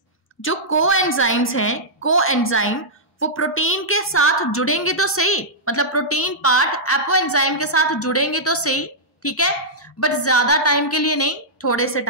जो कोएंजाइम्स हैं, कोएंजाइम वो प्रोटीन के साथ जुड़ेंगे तो सही, मतलब प्रोटीन पार्ट एपोएंजाइम के साथ जुड़ेंगे तो सही, ठीक है, बट ज्यादा टाइम के लिए नहीं, थोड़े से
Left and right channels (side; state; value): both; normal; correlation -0.11